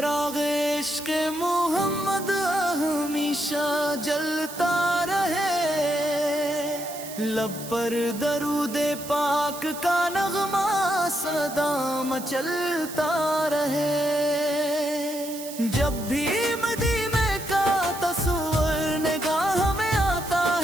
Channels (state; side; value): noise; right; hiss, 12 dB below the sound